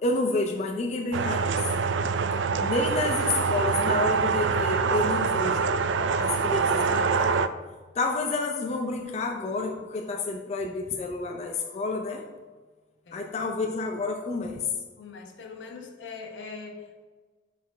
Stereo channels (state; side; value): normal; both; correlation 0.00